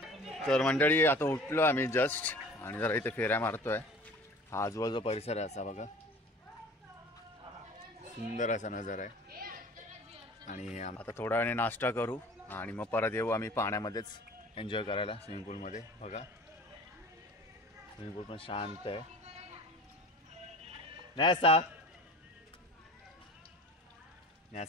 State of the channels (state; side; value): normal; both; correlation 0.43